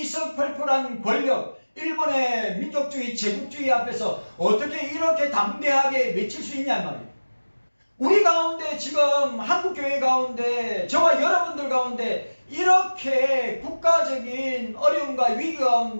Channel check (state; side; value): inverted; both; correlation -1.00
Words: 권력, 일본의 민족주의, 제국주의 앞에서 어떻게 이렇게 담대하게 외칠 수 있냐 말이에요. 우리 가운데 지금 한국교회 가운데 저와 여러분들 가운데 이렇게 국가적인 어려움과 위기